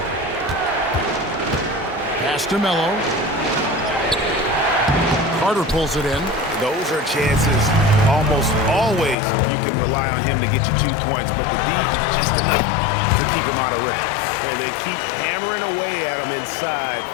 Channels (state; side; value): drops out; right; at 9.2 s